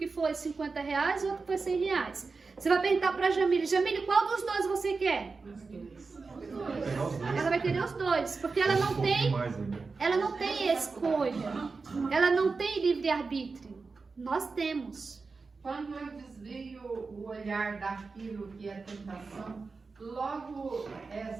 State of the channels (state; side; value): quieter; left; 4.3 dB